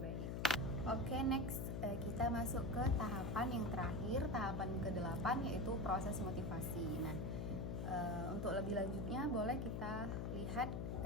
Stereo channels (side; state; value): left; noise; hum, 1 dB below the sound